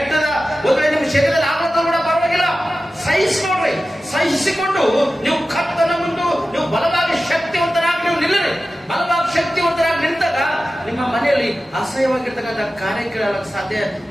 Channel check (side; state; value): both; normal; correlation 0.94